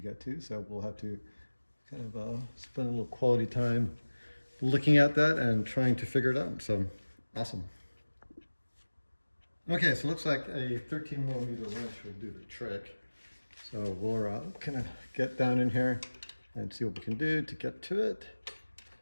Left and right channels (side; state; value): both; inverted; correlation -1.00